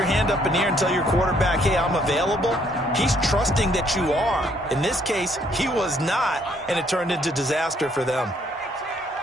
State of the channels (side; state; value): both; normal; correlation 0.67